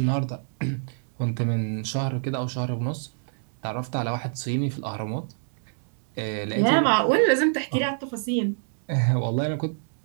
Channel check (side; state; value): left; silent; digital silence